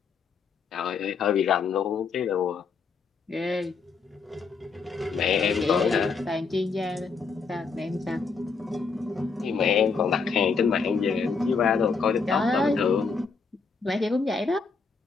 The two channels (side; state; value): right; quieter; 5.0 dB